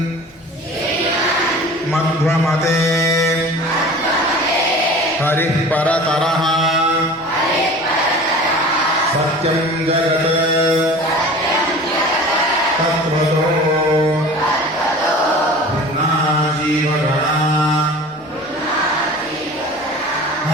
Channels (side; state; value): both; normal; correlation 0.40